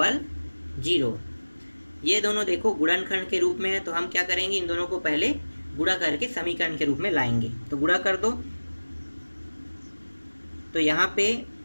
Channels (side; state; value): both; inverted; correlation -1.00